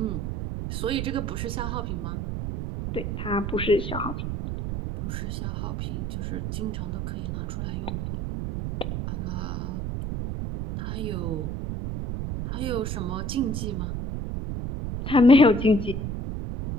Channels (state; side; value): noise; right; rumble, 3 dB below the sound